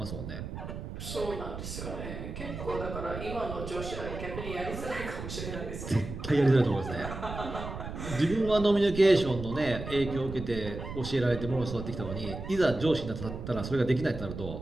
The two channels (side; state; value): right; noise; rumble, 8 dB below the sound